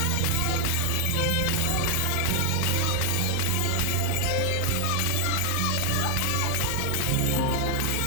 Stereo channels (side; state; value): both; different; correlation 0.00